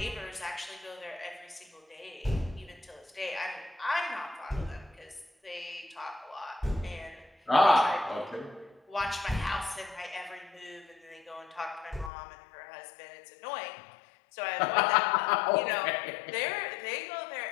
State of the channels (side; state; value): right; drops out; at 12.1 s